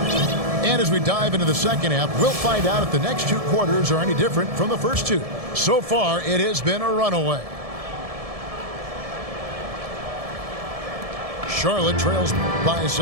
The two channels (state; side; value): late; left; 1.7 ms